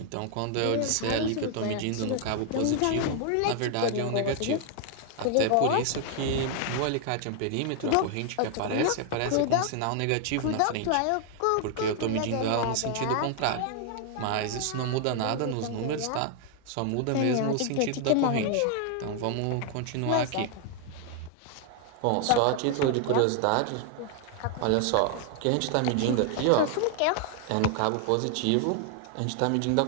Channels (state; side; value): different; both; correlation 0.00